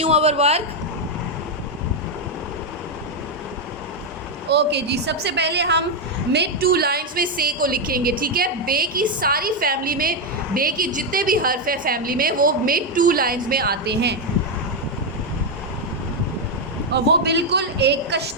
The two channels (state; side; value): normal; both; correlation 0.03